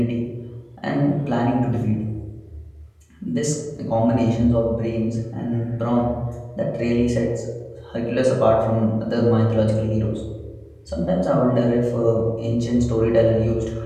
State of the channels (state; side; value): identical; both; correlation 1.00